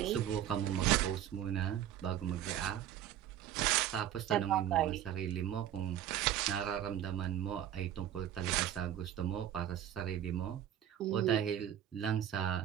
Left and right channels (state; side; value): quieter; left; 11.0 dB